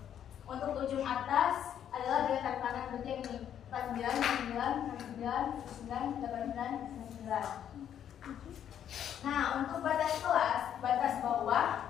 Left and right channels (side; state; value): right; quieter; 9.7 dB